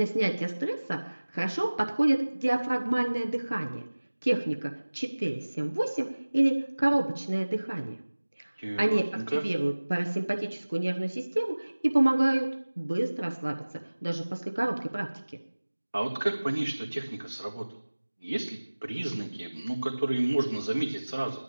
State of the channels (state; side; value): inverted; both; correlation -1.00